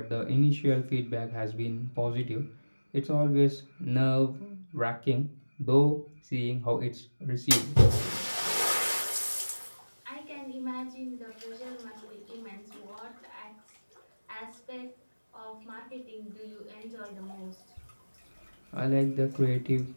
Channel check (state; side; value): inverted; both; correlation -1.00